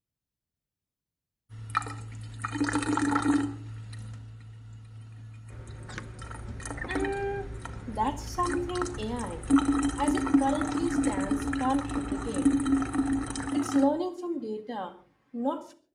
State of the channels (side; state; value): both; identical; correlation 1.00